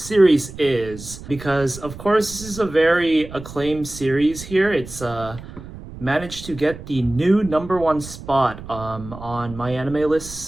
is, because of course this is a very acclaimed series here. It's managed to get the new #1 spot on my anime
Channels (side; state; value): right; noise; rumble, 14 dB below the sound